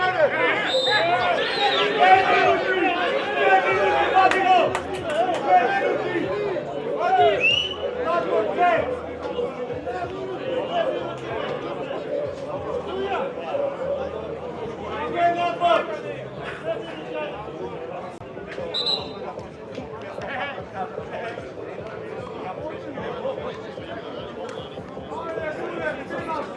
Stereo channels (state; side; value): identical; both; correlation 1.00